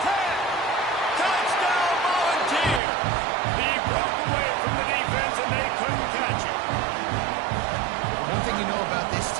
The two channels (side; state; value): left; drops out; at 2.8 s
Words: 10. Touchdown Volunteers. He broke away from the defense and they couldn't catch him. One thing you know about this